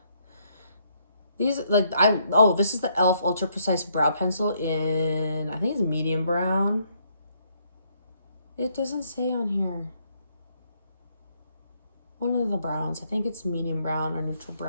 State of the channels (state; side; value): inverted; both; correlation -0.72